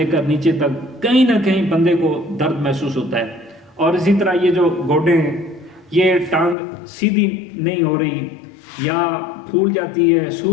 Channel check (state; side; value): drops out; right; at 6.6 s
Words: کر نیچے تک کہیں نہ کہیں بندے کو درد محسوس ہوتا ہے۔ اور اسی طرح یہ جو گوڈے ہیں، یہ ٹانگ سیدھی نہیں ہو رہی یا پھول جاتی ہے،